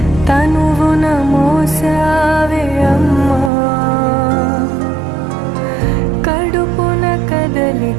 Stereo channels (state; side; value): drops out; left; at 3.5 s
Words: తనువున మోసావే అమ్మా. కడుపున